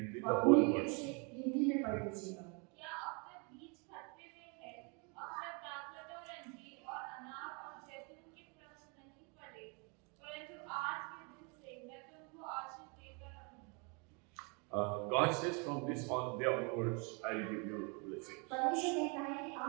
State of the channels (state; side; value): quieter; left; 33.6 dB